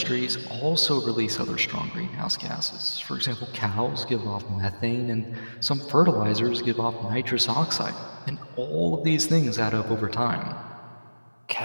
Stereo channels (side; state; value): both; inverted; correlation -1.00